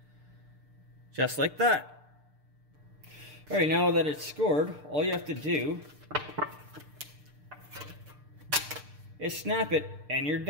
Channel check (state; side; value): late; left; 6.7 ms